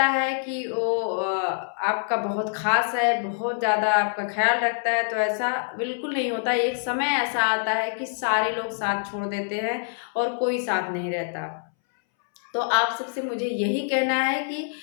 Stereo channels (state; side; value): silent; right; 61 dB below the other